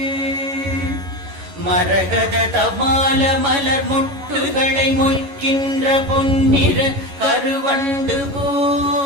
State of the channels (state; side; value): late; left; 11 ms